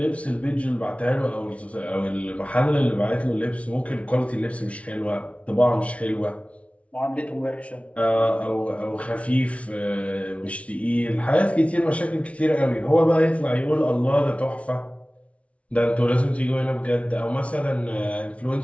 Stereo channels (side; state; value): right; late; 0.063 ms